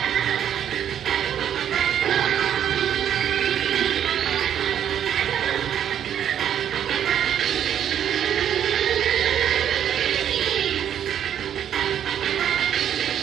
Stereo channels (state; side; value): quieter; left; 9.6 dB